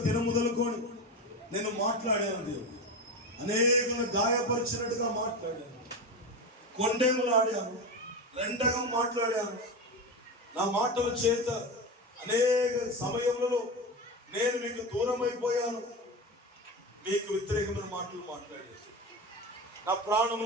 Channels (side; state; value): both; normal; correlation 0.21